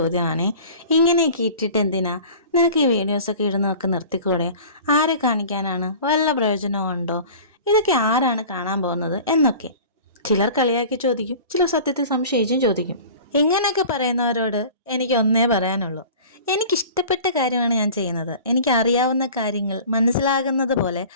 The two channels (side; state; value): both; inverted; correlation -0.41